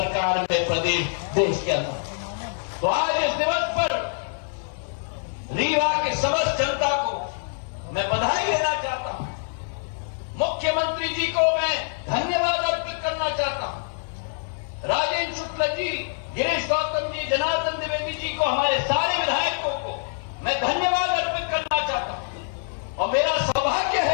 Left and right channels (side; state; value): right; silent; digital silence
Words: में, प्रदेश देश के अंदर। तो आज इस दिवस पर रीवा के समस्त जनता को मैं बधाई देना चाहता हूं। मुख्यमंत्री जी को मैं धन्यवाद अर्पित करना चाहता हूं। राजेंद्र शुक्ल जी, गिरीश गौतम जी, जनार्दन द्विवेदी जी को, हमारे सारे विधायकों को मैं धन्यवाद अर्पित करना चाहता हूं। और मेरा सौभाग्य